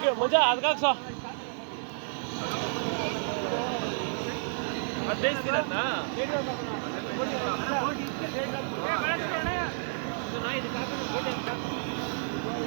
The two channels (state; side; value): silent; left; 58 dB below the other